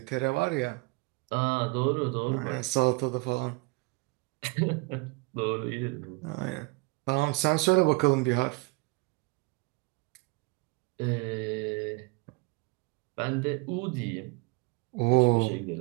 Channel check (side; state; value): left; quieter; 26.1 dB